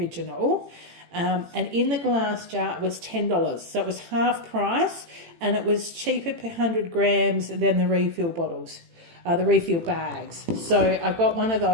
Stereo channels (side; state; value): left; late; 18 ms